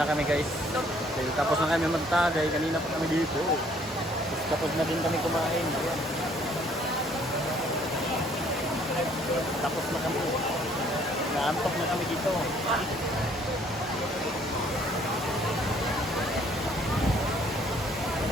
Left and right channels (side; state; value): both; normal; correlation 0.61